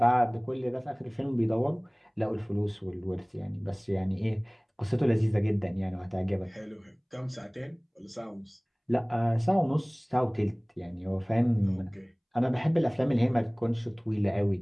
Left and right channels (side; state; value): both; identical; correlation 1.00